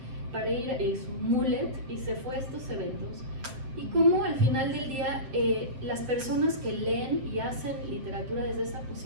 para ir, y su mullet, y se fue a estos eventos. Y cómo al final del día las personas que leen y hacen literatura desde esa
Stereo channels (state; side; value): late; left; 7.6 ms